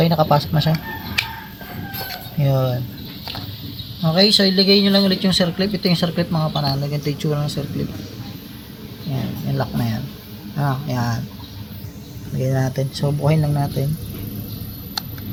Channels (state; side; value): identical; both; correlation 1.00